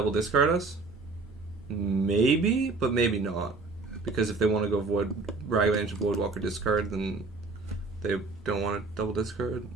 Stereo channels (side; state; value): left; quieter; 3.8 dB